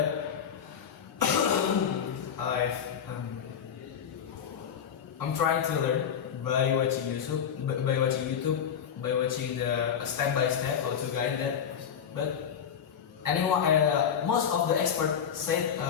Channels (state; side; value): quieter; right; 8.1 dB